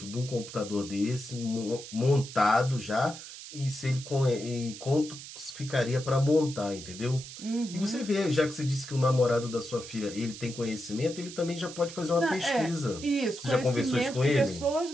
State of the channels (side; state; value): right; noise; hiss, 13 dB below the sound